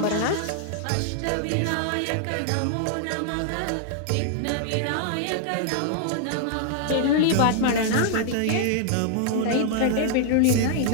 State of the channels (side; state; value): both; different; correlation -0.01